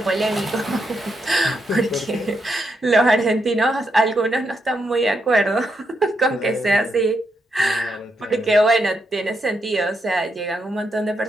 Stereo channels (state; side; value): normal; both; correlation 0.81